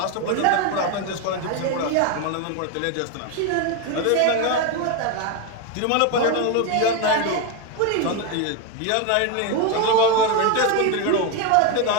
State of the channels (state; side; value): different; both; correlation 0.02